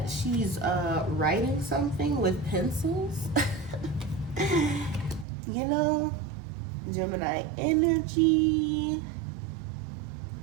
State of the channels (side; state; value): left; drops out; at 5.2 s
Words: she's writing something with pencils. You know, Gemini energy.